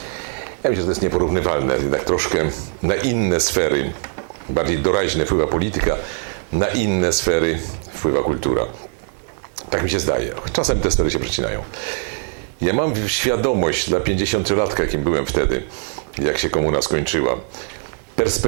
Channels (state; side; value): silent; left; 55 dB below the other